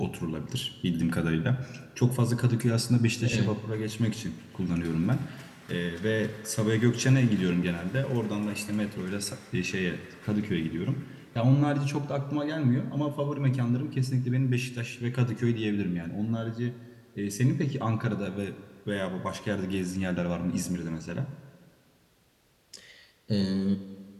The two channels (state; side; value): identical; both; correlation 1.00